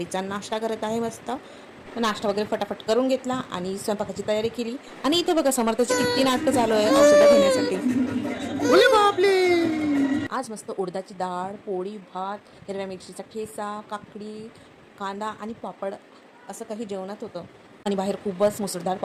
नाश्ता करत आहे. मस्त नाश्ता वगैरे फटाफट करून घेतला आणि स्वयंपाकाची तयारी केली. आणि इथे बघा समर्थाची किती नाटकं चालू आहे औषधं घेण्यासाठी. आज मस्त उडदाची डाळ, पोळी, भात, हिरव्या मिरचीचा ठेचा, काकडी, कांदा आणि पापड असं काही जेवणात होतं. आणि बाहेर खूपच मुसळधार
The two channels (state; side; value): identical; both; correlation 1.00